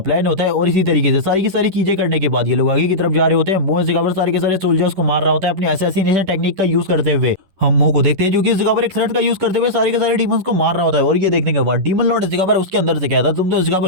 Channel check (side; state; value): left; late; 11 ms